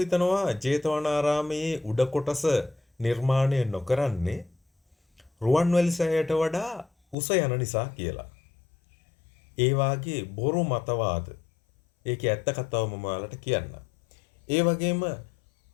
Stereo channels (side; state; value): right; drops out; at 7.2 s